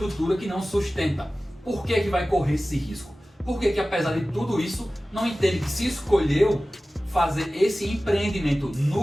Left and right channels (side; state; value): both; normal; correlation 0.96